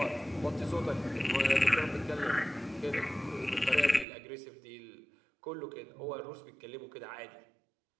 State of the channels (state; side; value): drops out; left; at 4.0 s